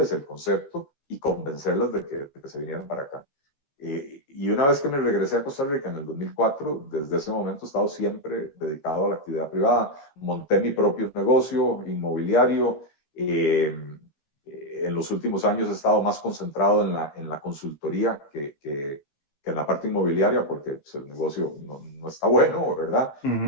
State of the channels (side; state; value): right; late; 14 ms